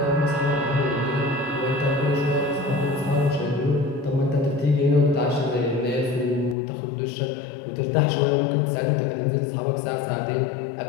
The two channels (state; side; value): drops out; right; at 6.6 s